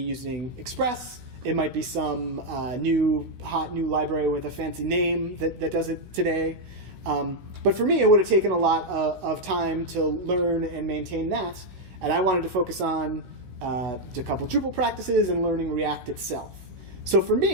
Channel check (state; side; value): late; left; 16 ms